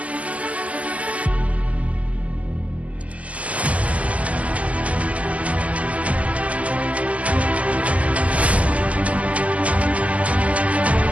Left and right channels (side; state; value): left; late; 0.069 ms